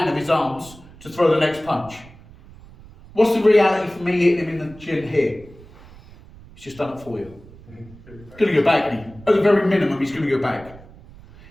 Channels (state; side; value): noise; right; rumble, 21 dB below the sound